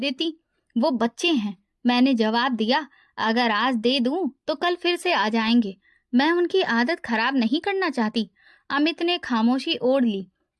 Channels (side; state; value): both; identical; correlation 1.00